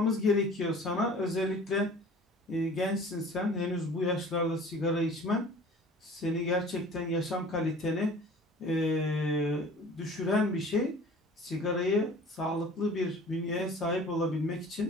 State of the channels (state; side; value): normal; both; correlation 0.46